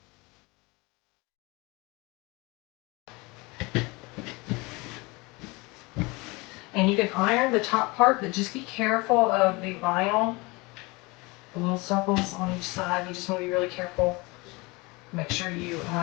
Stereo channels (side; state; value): right; quieter; 25.0 dB